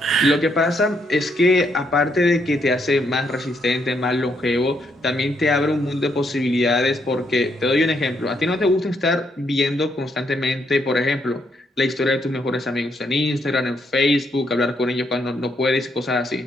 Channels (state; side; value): normal; both; correlation 0.75